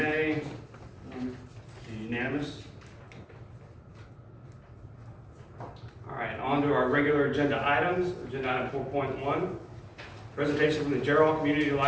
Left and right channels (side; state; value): both; identical; correlation 1.00